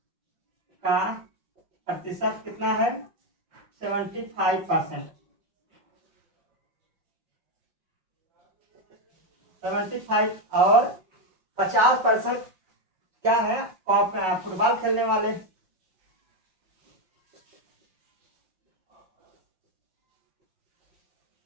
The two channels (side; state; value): left; late; 5.4 ms